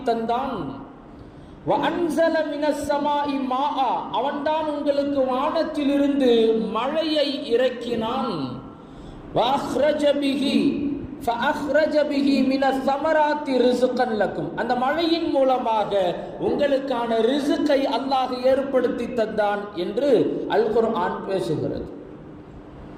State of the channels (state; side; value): identical; both; correlation 1.00